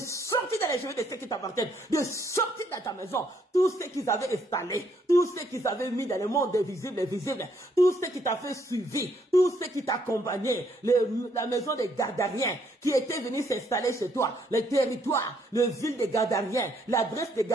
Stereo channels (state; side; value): normal; both; correlation 0.70